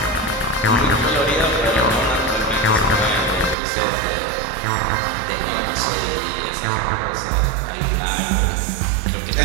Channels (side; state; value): left; drops out; at 3.6 s